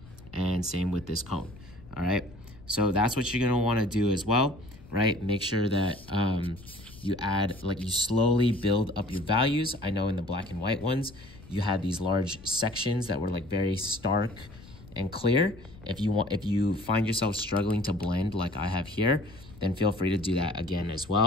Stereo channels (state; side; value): noise; left; rumble, 20 dB below the sound